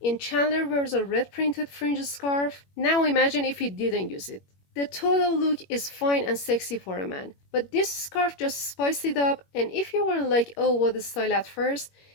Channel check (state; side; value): late; right; 21 ms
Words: And Chandler wears a red printed fringe scarf? Now imagine if he didn't use it. The total look is fine and sexy for a man, but this scarf just spiced it up, and if you were like, oh, what a style at first,